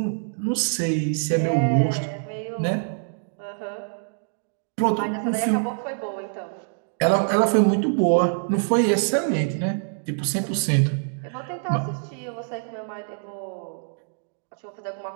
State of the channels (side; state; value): left; silent; digital silence